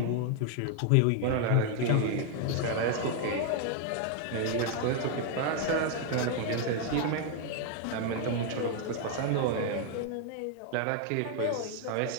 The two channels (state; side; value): different; both; correlation 0.00